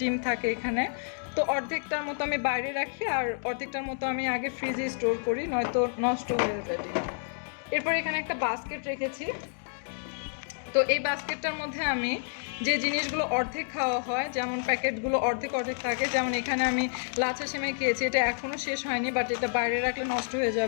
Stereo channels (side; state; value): right; silent; digital silence